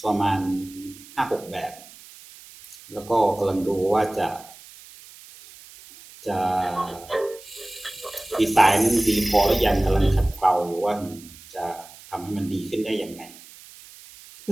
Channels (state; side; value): noise; right; hiss, 20 dB below the sound